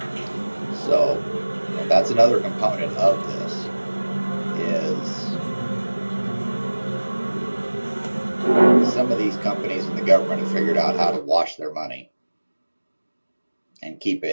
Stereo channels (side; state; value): both; inverted; correlation -1.00